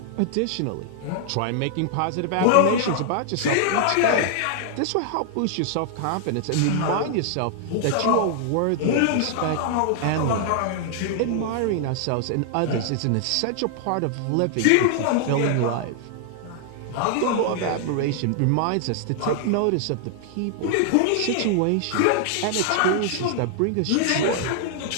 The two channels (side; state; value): both; different; correlation 0.00